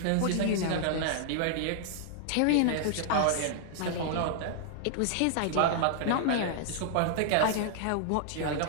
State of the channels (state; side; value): different; both; correlation -0.01